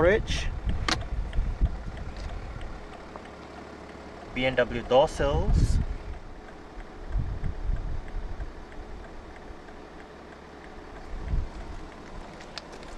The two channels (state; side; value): identical; both; correlation 1.00